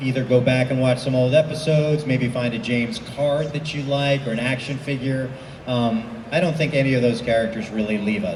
either go back and watch some old episodes, maybe find a James card that you like or an action figure. I don't think any of those characters really leave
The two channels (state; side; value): identical; both; correlation 1.00